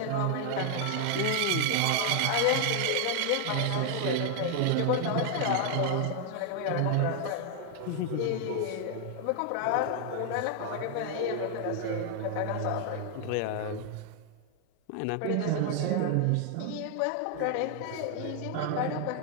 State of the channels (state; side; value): different; both; correlation 0.00